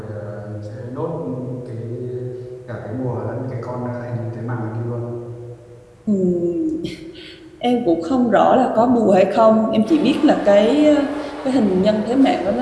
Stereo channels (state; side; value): identical; both; correlation 1.00